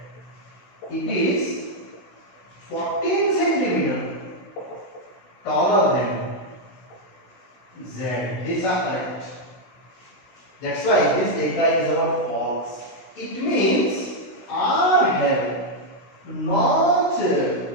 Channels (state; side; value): late; right; 16 ms